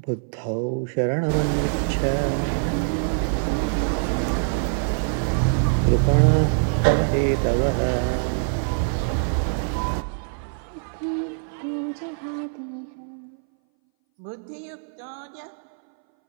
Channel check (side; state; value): left; silent; 61 dB below the other